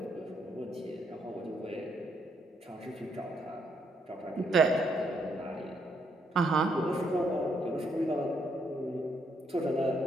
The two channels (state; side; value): normal; both; correlation 0.74